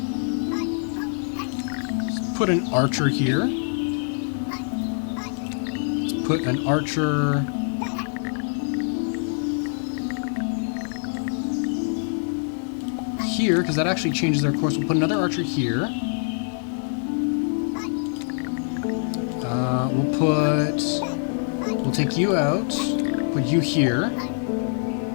Let's put an archer here. Let's put an archer... here, because that actually changes their course. We'll put another archer here. We'll take you out. Put you here.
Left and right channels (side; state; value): right; silent; 62 dB below the other